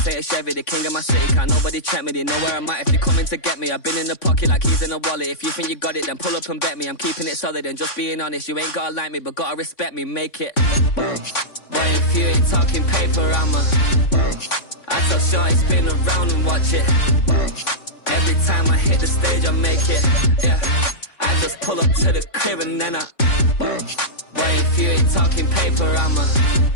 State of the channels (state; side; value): late; right; 3.5 ms